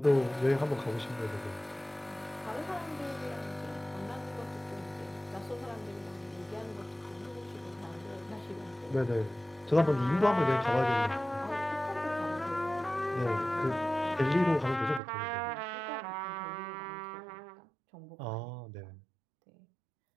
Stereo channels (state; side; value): drops out; left; at 15.0 s